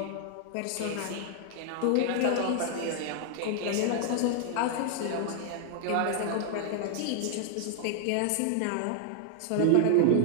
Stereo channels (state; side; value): different; both; correlation 0.00